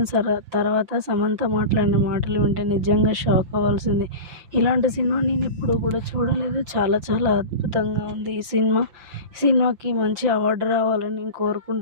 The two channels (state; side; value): late; left; 5.9 ms